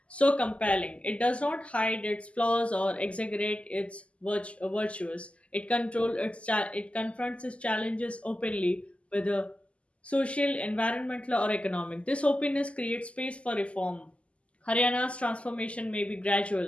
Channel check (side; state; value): right; late; 0.060 ms